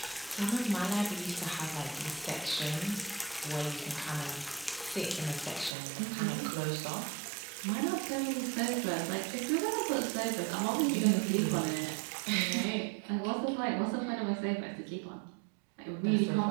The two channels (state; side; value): drops out; left; at 5.7 s